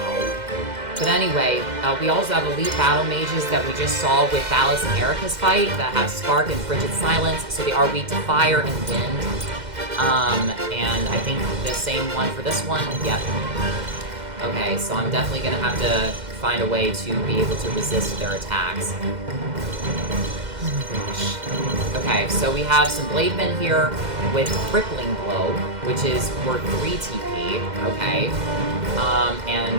But anyway, we also have elite battle mages that we just saw with Thalas and Erica's fight that have Spark and Frigid Silence, so they are weak to fire and wind. And I think the same one for this one. Yep. Okay, so I'm definitely gonna have to find a way to be able to resist their attacks. Oh my gosh. Okay, so we have some Blademen here with Crippling Blow, which is worth 3 TP, okay. And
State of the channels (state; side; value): late; left; 2.1 ms